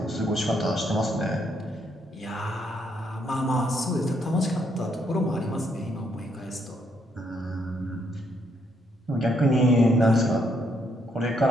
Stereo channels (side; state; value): both; normal; correlation 0.73